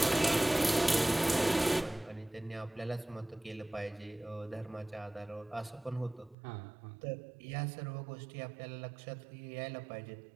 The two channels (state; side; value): drops out; left; at 6.4 s